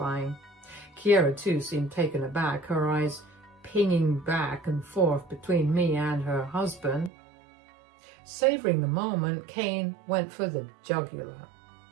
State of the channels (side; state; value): left; drops out; at 7.1 s